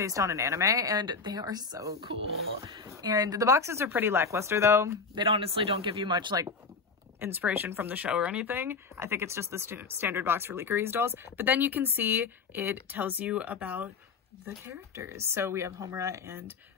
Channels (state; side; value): quieter; right; 4.8 dB